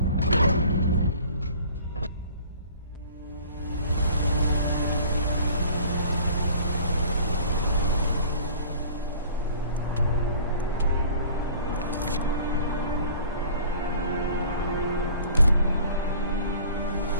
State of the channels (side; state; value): both; inverted; correlation -0.49